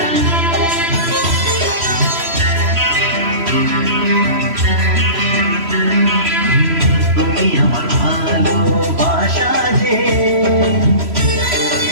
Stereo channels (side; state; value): left; late; 3.0 ms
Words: তুমি আমার ভালোবাসা যে,